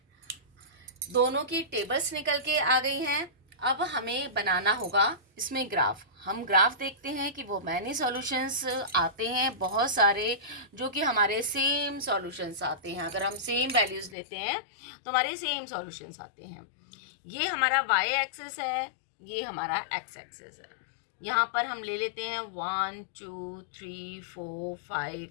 दोनों की टेबल्स निकल के आ गई हैं। अब हमें बनाना होगा इसमें ग्राफ। हम ग्राफ देखते हैं कि वो मैनी सॉल्यूशंस आते हैं बहुत सारे, जो कि हमारे सेम सॉल्यूशंस आते हैं। अगर हम सेम वैल्यूज लेते हैं तो हमारे सेम सॉल्यूशंस आते हैं। ये हमारा y एक्सिस है, ये हमारा x एक्सिस है। यहाँ पर हम ले लेते हैं 1 2 3 4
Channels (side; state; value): right; drops out; at 14.2 s